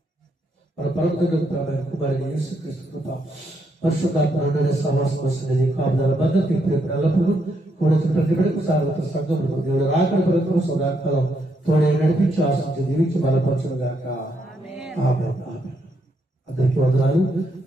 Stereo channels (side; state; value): both; normal; correlation 0.77